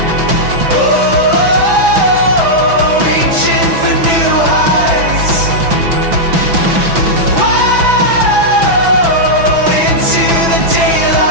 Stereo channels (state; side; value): late; left; 6.0 ms